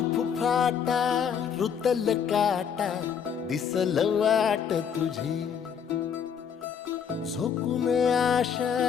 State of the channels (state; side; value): quieter; right; 7.5 dB